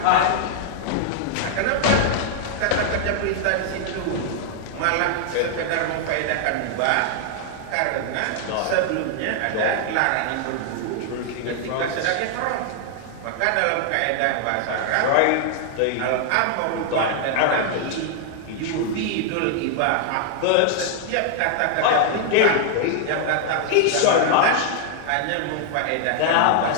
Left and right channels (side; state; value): both; different; correlation 0.00